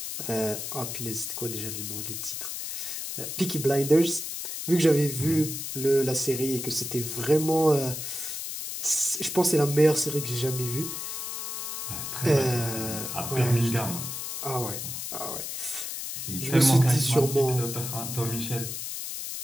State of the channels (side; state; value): left; noise; hiss, 5 dB below the sound